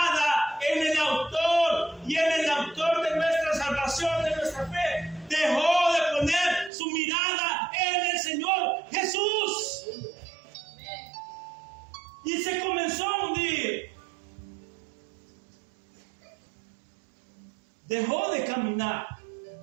en el autor y en el autor de nuestra salvación, de nuestra fe. Dejó de poner su mirada en el Señor Jesús. Y se comenzó a hundir. Dejó de caminar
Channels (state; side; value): drops out; left; at 6.7 s